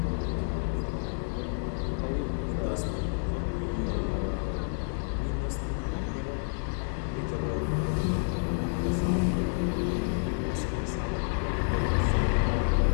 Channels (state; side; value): silent; right; digital silence